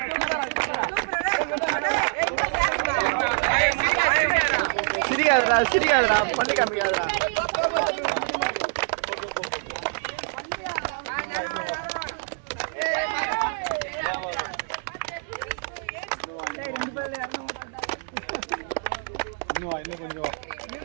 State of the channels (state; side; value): silent; left; 61 dB below the other